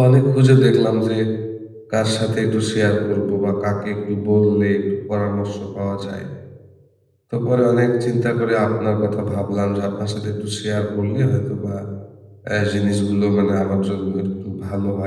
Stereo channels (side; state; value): both; identical; correlation 1.00